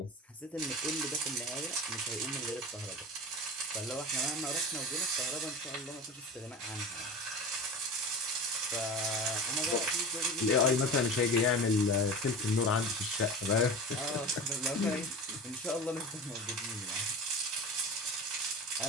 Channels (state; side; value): normal; both; correlation 0.31